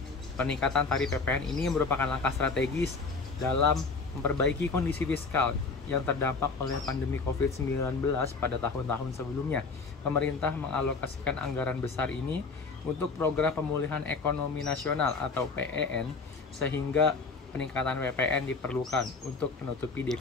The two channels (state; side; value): quieter; right; 4.3 dB